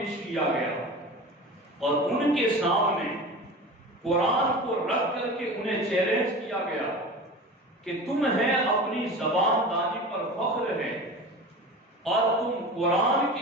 کیا گیا اور ان کے سامنے قرآن کو رکھ کر کے انہیں چیلنج کیا گیا کہ تمہیں اپنی زبان دانی پر فخر ہے اور تم قرآن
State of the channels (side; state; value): both; normal; correlation 0.33